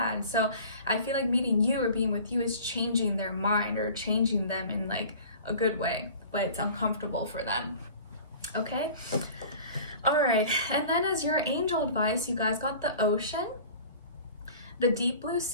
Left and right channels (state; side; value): inverted; both; correlation -0.43